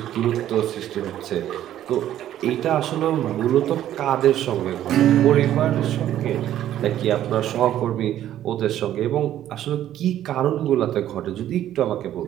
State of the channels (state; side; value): quieter; left; 12.0 dB